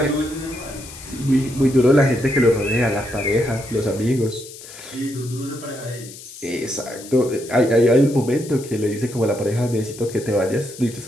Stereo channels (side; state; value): left; noise; hiss, 16 dB below the sound